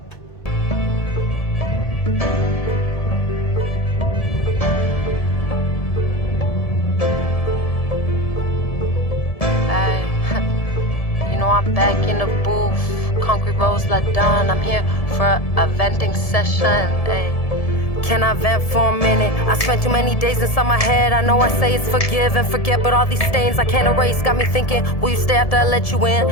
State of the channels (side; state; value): right; late; 1.7 ms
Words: I'm back in the booth. ConcreteRose LaDon. I'm here for a venting session. Ay. Can I vent for a minute? I spent too many days inside my head. I know I say it's forgive and forget, but all these stains I can't erase got me thinking, will you stay after I let you in?